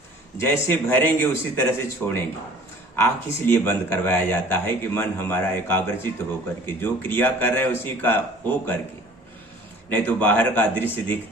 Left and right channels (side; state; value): both; normal; correlation 0.49